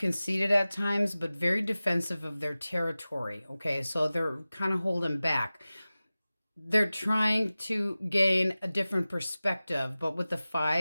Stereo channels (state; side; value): inverted; both; correlation -0.97